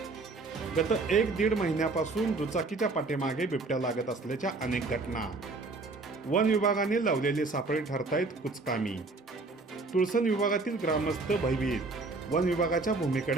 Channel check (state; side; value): quieter; left; 3.5 dB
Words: गत 1-1.5 महिन्यापासून दुचाकीच्या पाठीमागे बिबट्या लागत असल्याच्या अनेक घटना. वन विभागाने लावलेले सापळे ठरतायत कुचकामी. तुळसण विभागातील ग्रामस्थ भयभीत. वन विभागाच्या